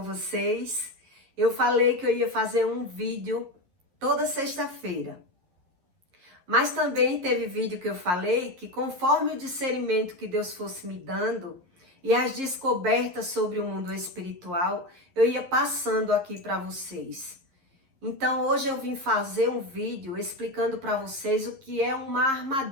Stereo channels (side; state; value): left; late; 11 ms